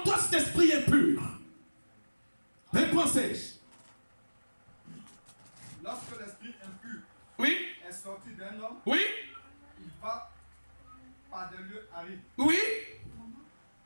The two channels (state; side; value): inverted; both; correlation -1.00